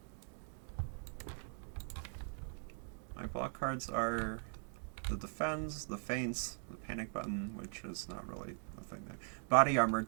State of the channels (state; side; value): silent; left; 51 dB below the other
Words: My block cards are the Defends, the Feints, the Panic Button, which is not really a thing there. Body Armor,